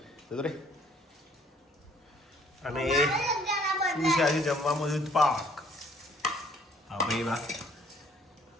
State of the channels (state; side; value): normal; both; correlation 0.60